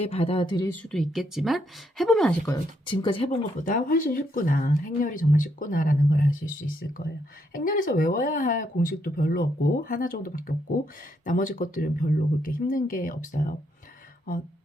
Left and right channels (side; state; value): both; normal; correlation 0.75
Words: 받아들일 수도 있겠지만 해보면 아실 거예요. 지금까지 해본 것보다 훨씬 쉽구나. 행렬이 정말 쉽구나라는 걸 아실 수 있을 거예요. 행렬에서 외워야 할 공식도 별로 없고 하나 정도밖에 없고 나머지 것들은 별로 그렇게 힘든 게 없어요.